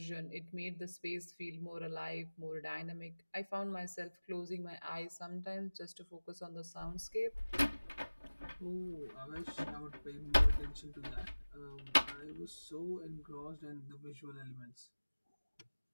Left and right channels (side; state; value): both; inverted; correlation -1.00